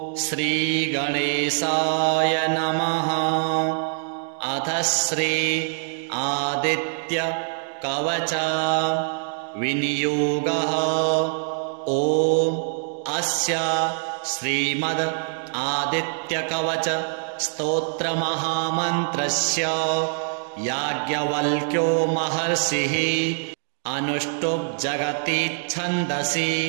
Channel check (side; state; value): left; silent; 63 dB below the other